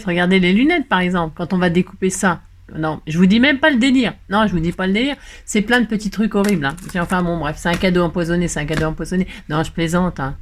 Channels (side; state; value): both; identical; correlation 1.00